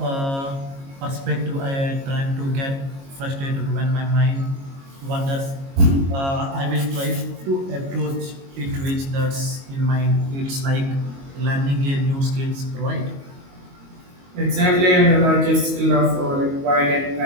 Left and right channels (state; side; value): late; left; 22 ms